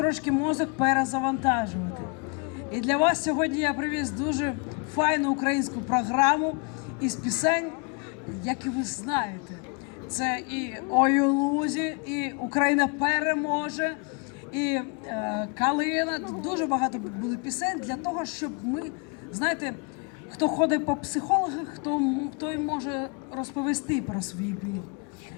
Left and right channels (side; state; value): right; quieter; 34.6 dB